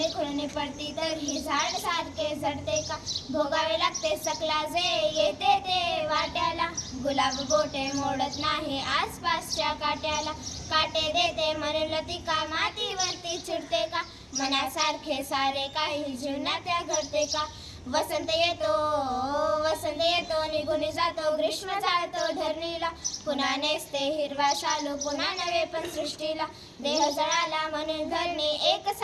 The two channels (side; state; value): both; identical; correlation 1.00